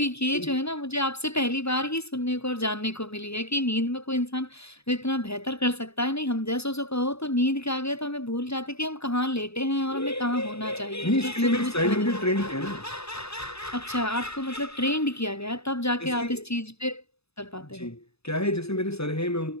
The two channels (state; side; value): late; right; 0.79 ms